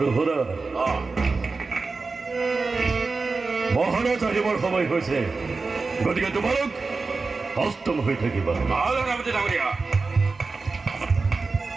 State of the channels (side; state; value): left; quieter; 4.1 dB